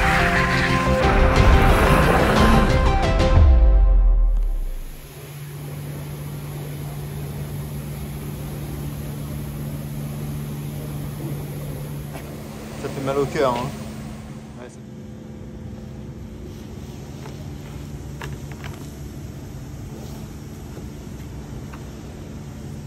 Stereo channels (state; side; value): identical; both; correlation 1.00